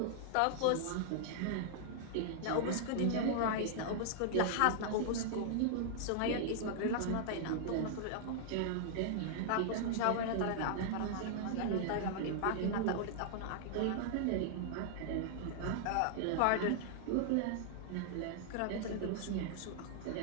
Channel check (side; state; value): both; different; correlation -0.01